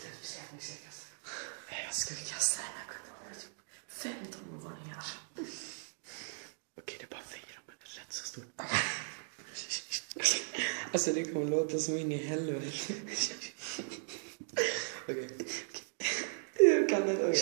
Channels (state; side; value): silent; left; digital silence